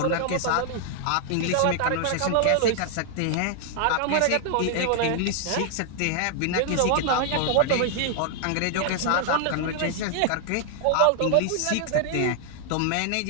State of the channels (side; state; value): both; different; correlation 0.00